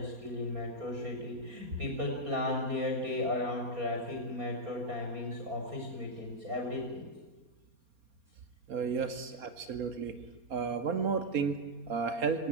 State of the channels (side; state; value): left; late; 4.3 ms